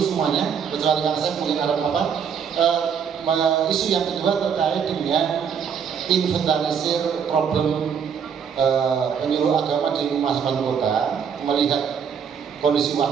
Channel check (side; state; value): left; quieter; 7.2 dB